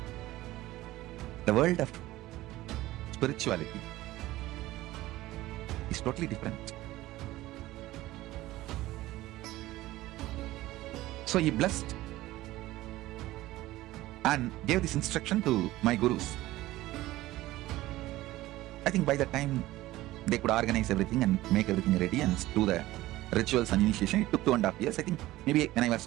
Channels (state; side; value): quieter; left; 16.8 dB